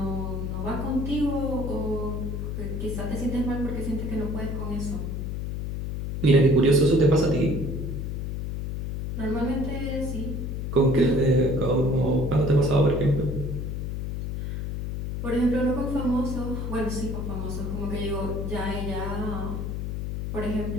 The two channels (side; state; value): left; noise; hum, 4 dB below the sound